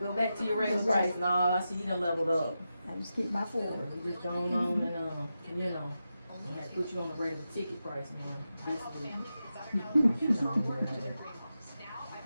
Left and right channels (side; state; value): both; inverted; correlation -0.90